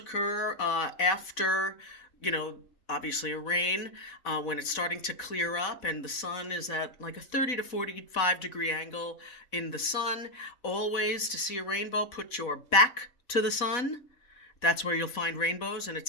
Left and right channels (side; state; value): right; late; 4.1 ms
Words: after, obviously a rain, when it's starting to clear up and the sun is at like a 30 to 45 degree angle in the sun. Always, to see a rainbow, put your back to the sun. That's where you'll find rainbows, and